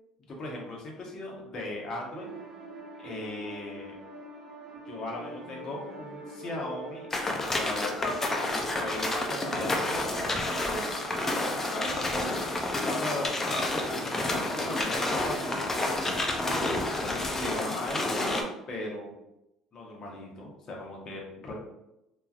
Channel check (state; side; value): normal; both; correlation 0.65